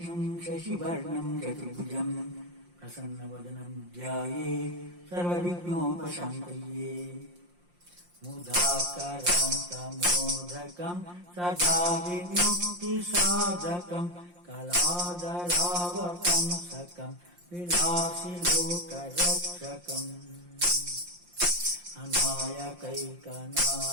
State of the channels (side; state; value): left; late; 5.7 ms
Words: ಶಶಿವರ್ಣಂ ಚತುರ್ಭುಜಂ ಪ್ರಸನ್ನವದನಂ ಧ್ಯಾಯೇತ್ ಸರ್ವವಿಘ್ನೋಪಶಾಂತಯೇ. ಮುದಾಕರಾಂತಮೋದಕಂ ಸದಾ ವಿಮುಕ್ತಿಸಾಧಕಂ ಕಲಾಧರಾವಕಂ ಸಕಂ ವಿಲಾಸಿ ಲೋಕರಕ್ಷಕಂ ಅನಾಯಕೈಕನಾಯಕಂ